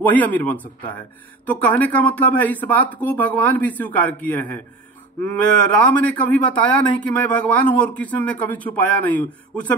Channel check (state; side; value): quieter; left; 3.3 dB